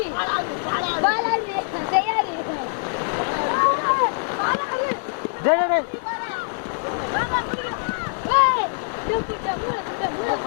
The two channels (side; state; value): right; silent; digital silence